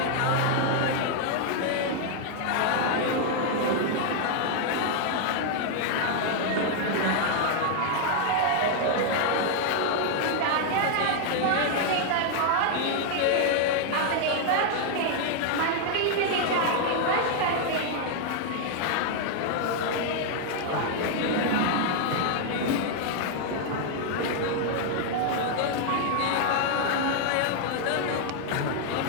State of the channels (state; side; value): different; both; correlation 0.00